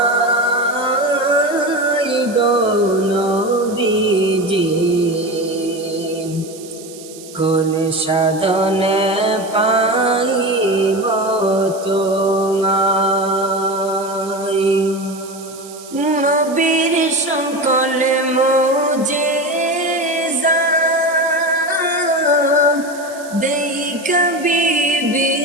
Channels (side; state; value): right; noise; hiss, 18 dB below the sound